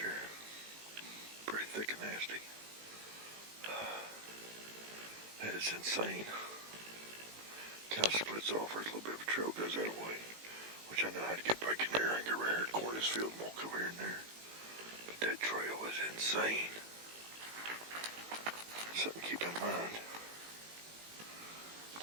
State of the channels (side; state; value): left; late; 18 ms